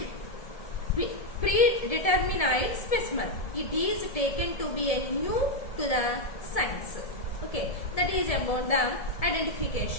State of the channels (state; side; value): late; right; 1.7 ms